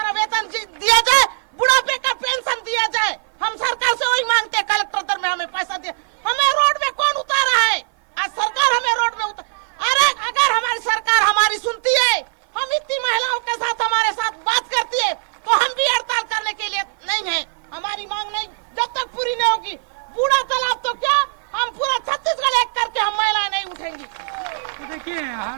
वेतन दिया जाए, बुढ़ापे का पेंशन दिया जाए। हम सरकार से वही मांगते हैं, कलेक्टर दर में हमें पैसा दिया। हमें रोड में कौन उतारा है? आज सरकार हमें रोड में अरे अगर हमारी सरकार हमारी सुनती है, हम इतनी महिलाओं के साथ हमारे साथ बात करती है, तो हम भी हड़ताल करने के लिए नहीं है। हमारी मांग नहीं जब तक पूरी नहीं होगी, बूढ़ा तालाब तो क्या, हम पूरा छत्तीसगढ़ एक करके हम महिलाएं नहीं उठेंगी। तो देखिए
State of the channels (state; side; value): silent; left; 58 dB below the other